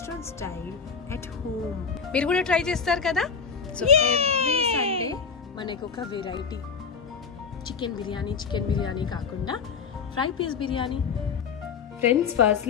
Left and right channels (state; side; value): quieter; right; 5.9 dB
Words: style at home. మీరు కూడా try చేస్తారు కదా. సో ఎవ్రీ సండే మనకు ఒక వెరైటీ చికెన్ బిర్యానీ కాకుండా fry piece biryani. Friends,